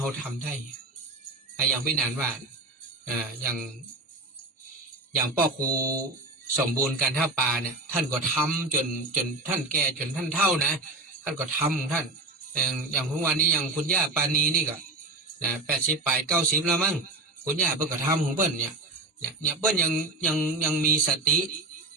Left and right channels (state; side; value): quieter; left; 3.1 dB